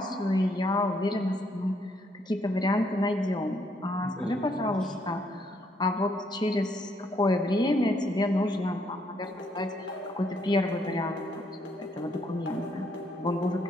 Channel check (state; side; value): normal; both; correlation 0.71